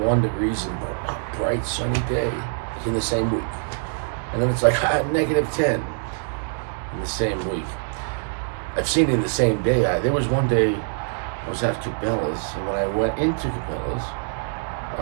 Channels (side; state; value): left; silent; digital silence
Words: degrees and a bright sunny day in the same week. And then it's like negative 10 in the same week. I've seen it in the same day. There was one day I was at Cabela's, and when I went into Cabela's,